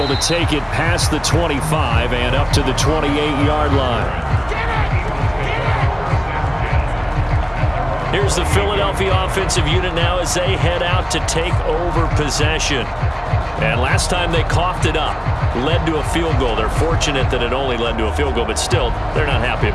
to take it past the 25 and up to the 28-yard line. Here's the Philadelphia offensive unit now as they head out to take over possession. And last time they coughed it up, led to a field goal. They're fortunate that it only led to a field goal, but still, they're not happy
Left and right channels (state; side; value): identical; both; correlation 1.00